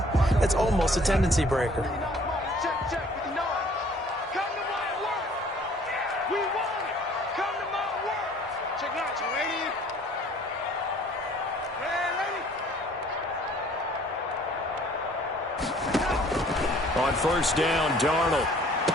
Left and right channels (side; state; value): both; normal; correlation 0.55